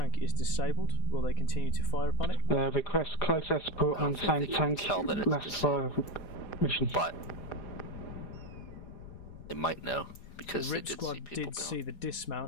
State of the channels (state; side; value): late; right; 4.1 ms